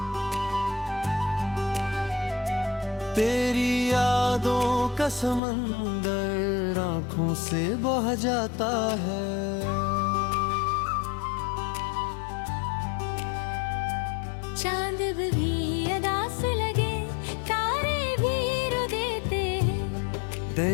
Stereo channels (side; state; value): right; drops out; at 5.4 s